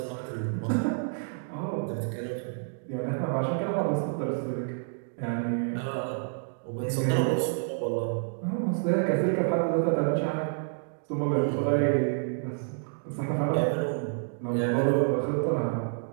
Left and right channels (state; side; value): silent; left; digital silence